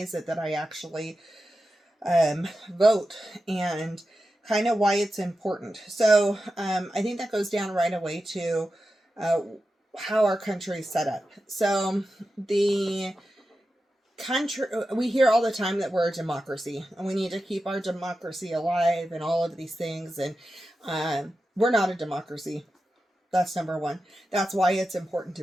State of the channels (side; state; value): both; normal; correlation 0.91